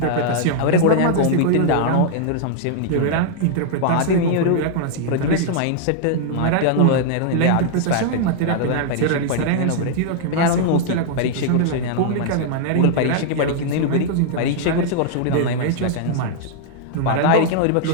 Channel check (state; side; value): different; both; correlation -0.01